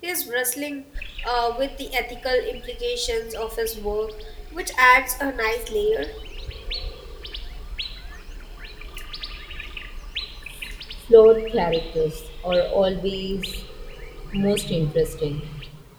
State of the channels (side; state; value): both; identical; correlation 1.00